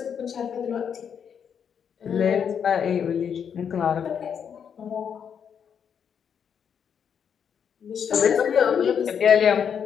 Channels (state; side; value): quieter; right; 7.6 dB